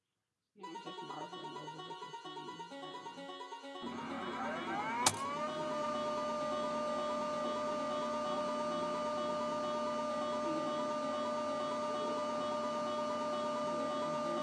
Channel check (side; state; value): both; identical; correlation 1.00